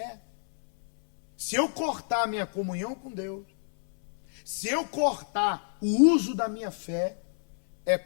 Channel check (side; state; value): right; silent; 59 dB below the other